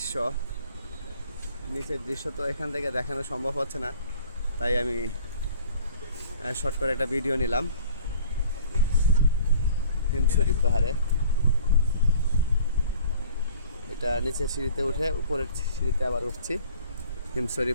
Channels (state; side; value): inverted; both; correlation -0.51